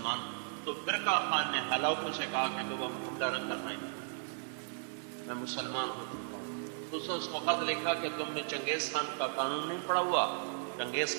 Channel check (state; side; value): silent; left; digital silence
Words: تو برقع خان نے ہلاکو سے کہا کہ تم حملہ نہ کرنا ہی، میں مسلمان ہو چکا ہوں۔ تو اس نے اس کو خط لکھا کہ تم نے چنگیز خان کا قانون نہیں پڑھا ہوا، چنگیز